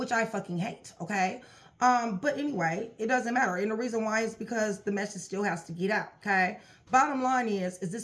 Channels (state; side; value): identical; both; correlation 1.00